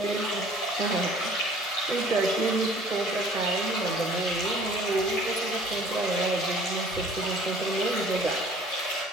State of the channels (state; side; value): normal; both; correlation 0.52